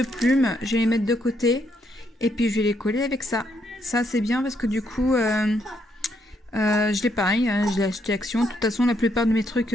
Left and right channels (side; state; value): both; normal; correlation 0.75